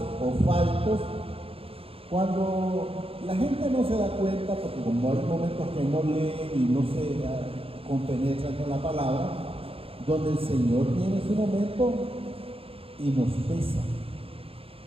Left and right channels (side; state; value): left; late; 0.27 ms